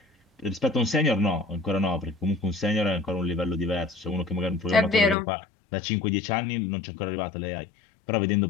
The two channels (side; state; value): right; drops out; at 5.2 s